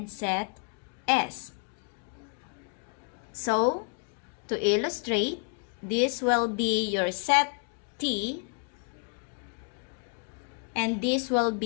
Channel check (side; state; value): right; quieter; 36.8 dB